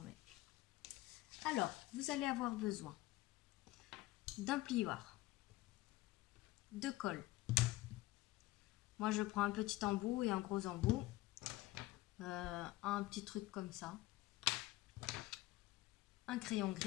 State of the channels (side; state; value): right; quieter; 17.7 dB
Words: même. Alors, vous allez avoir besoin d'un plioir, de colle. Moi je prends un petit embout et un gros embout, un petit truc comme ça, un crayon